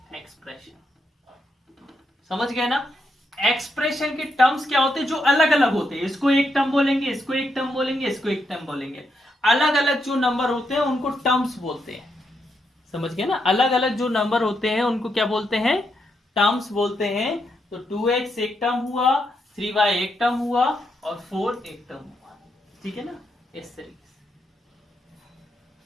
expression. समझ गए ना? एक्सप्रेशन के टर्म्स क्या होते हैं? जो अलग अलग होते हैं। इसको एक टर्म बोलेंगे, इसको एक टर्म बोलेंगे, इसको एक टर्म बोलेंगे। अलग अलग जो नंबर होते हैं उनको टर्म्स बोलते हैं। समझ गए ना? अलग अलग जो नंबर होते हैं उनको क्या बोलते हैं? टर्म्स बोलते हैं। तो 2x एक टर्म हुआ, 3y एक टर्म हुआ, और 4 एक टर्म हुआ, ठीक है ना। इस तरीके से।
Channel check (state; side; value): normal; both; correlation 0.81